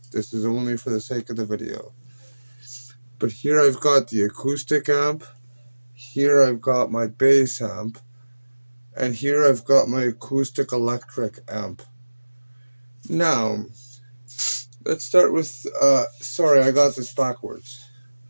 This is only for the sake of the video. But here I've got the acoustic amp. Here I've got my bass amp. And here I've got my acoustic electric amp. Now, let's start with, sorry, I got this backwards.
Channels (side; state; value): both; inverted; correlation -1.00